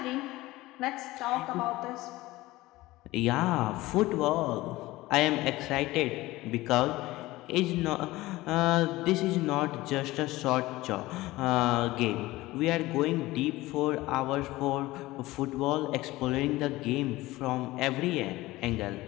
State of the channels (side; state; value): right; quieter; 18.6 dB